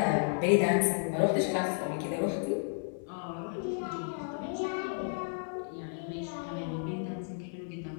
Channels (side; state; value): right; silent; 56 dB below the other